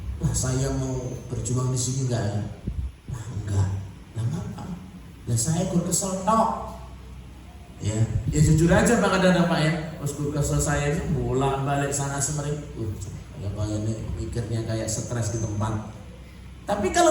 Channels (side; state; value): both; identical; correlation 1.00